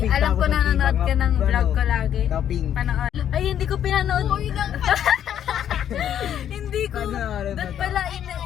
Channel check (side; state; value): right; quieter; 10.0 dB